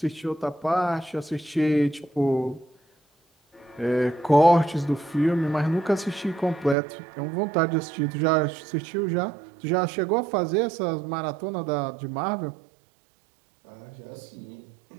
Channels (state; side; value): drops out; left; at 6.8 s